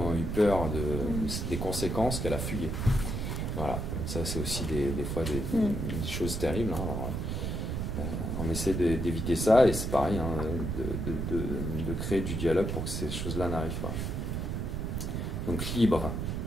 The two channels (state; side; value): noise; right; rumble, 2 dB below the sound